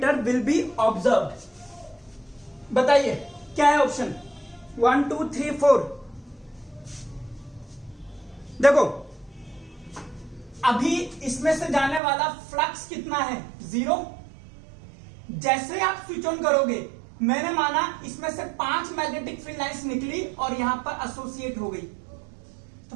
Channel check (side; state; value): left; drops out; at 12.0 s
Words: will be observed. बताइए क्या है ऑप्शन 1 2 3 4। देखो अभी इसमें से जाने वाला फ्लक्स कितना है, 0। जैसे आप स्विच ऑन करोगे, मैंने माना इसमें से 5 मैग्नेटिक फील्ड लाइंस निकली और यहां पर एसोसिएट हो गई, तो